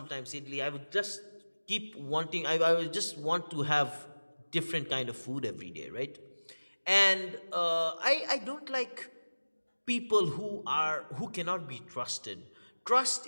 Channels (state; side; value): inverted; both; correlation -1.00